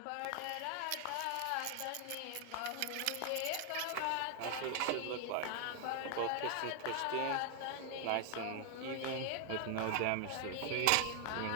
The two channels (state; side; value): different; both; correlation 0.00